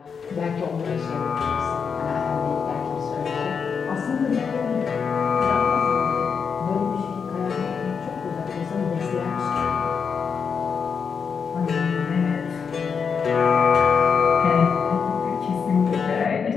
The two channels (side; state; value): right; quieter; 6.2 dB